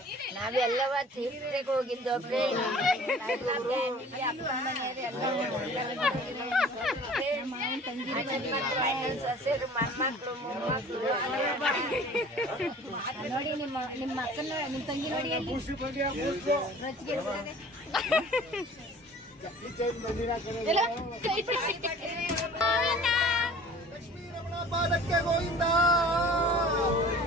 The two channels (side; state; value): both; normal; correlation 0.47